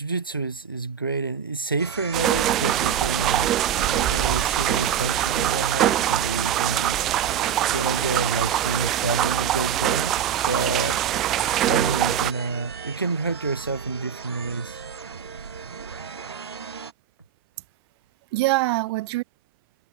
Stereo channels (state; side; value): quieter; left; 8.6 dB